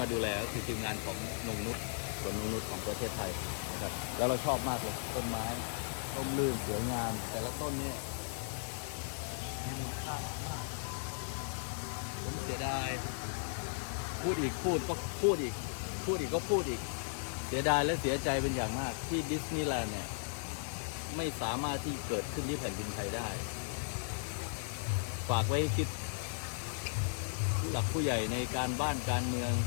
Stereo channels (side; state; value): right; silent; digital silence